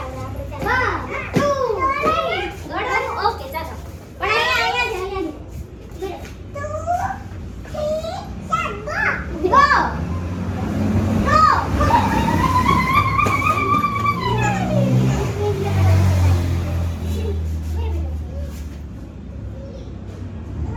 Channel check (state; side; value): identical; both; correlation 1.00